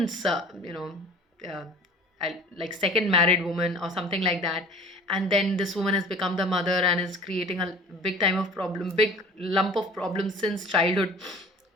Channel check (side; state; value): both; normal; correlation 0.44